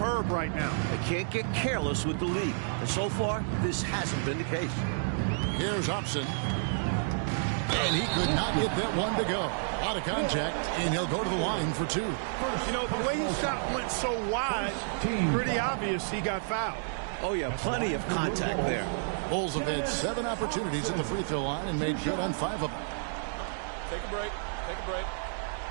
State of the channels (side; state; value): left; silent; digital silence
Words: right now. They can't get careless with the lead. And so far, this hasn't been the case. Here's Hobson. And he could not get that one to go. Out of contact, and he'll go to the line for 2. You know, the way his shot went so wide, pretty obvious he got fouled. Oh, yeah, plenty of contact there. Bulls have had 7 opportunities at the free throw line and made good on 5 of them. Take a break. Take a break.